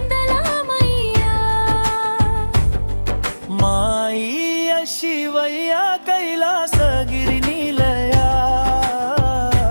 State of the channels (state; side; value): inverted; both; correlation -1.00